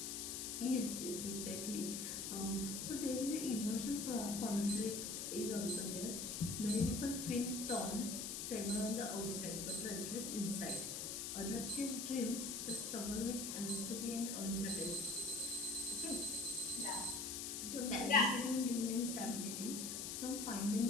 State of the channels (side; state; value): left; noise; hiss, 4 dB below the sound